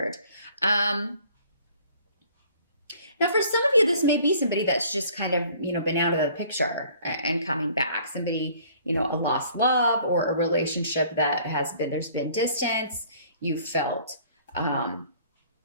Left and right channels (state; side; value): inverted; both; correlation -0.55